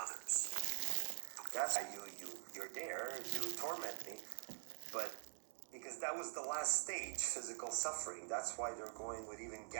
others. That's why you're there, you torment me, but because that was the last stage, physical suffering. That's why they're going with even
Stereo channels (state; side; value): silent; left; digital silence